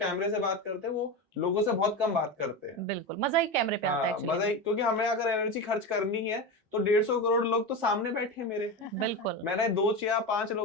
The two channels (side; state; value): both; normal; correlation 0.20